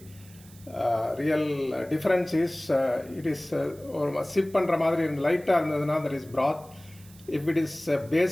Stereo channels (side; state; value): right; noise; hiss, 24 dB below the sound